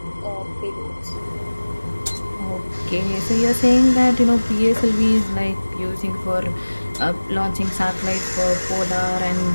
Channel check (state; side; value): inverted; both; correlation -1.00